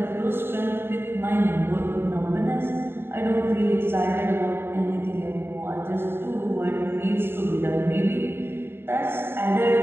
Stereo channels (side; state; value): left; late; 0.11 ms